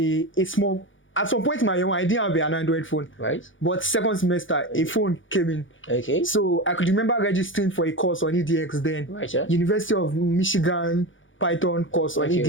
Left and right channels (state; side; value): late; right; 0.56 ms